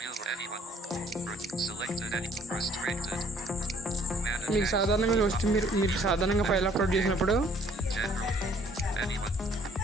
మీకు సాధారణంగా వస్తే మీరు సాధారణంగా ఫైల్ అప్లోడ్ చేసినప్పుడు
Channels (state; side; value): normal; both; correlation 0.60